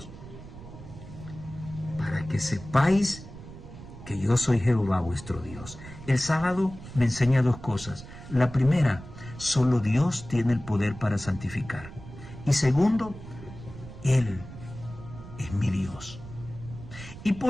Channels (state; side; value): noise; right; rumble, 15 dB below the sound